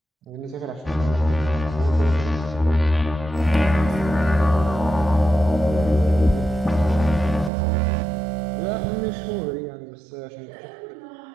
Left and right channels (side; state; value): left; drops out; at 7.5 s